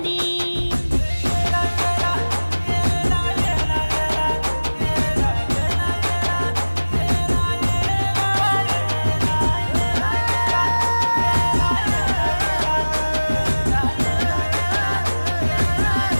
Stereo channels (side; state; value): both; inverted; correlation -1.00